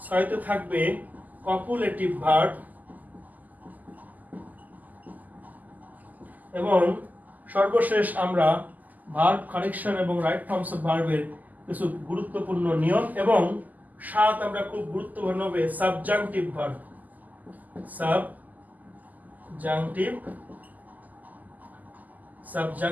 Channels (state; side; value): late; left; 0.081 ms